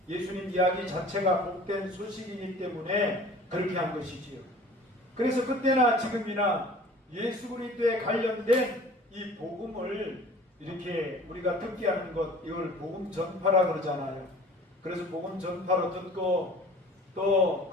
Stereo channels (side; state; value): both; normal; correlation 0.46